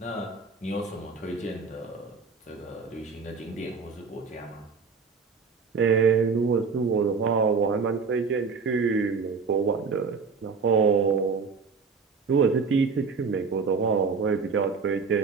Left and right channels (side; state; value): left; quieter; 5.1 dB